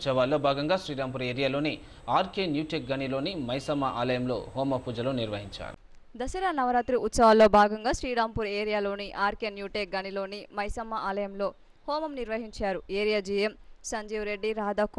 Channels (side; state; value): both; identical; correlation 1.00